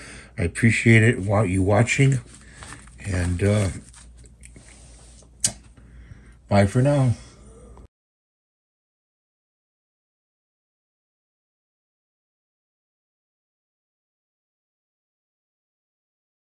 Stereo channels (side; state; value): both; identical; correlation 1.00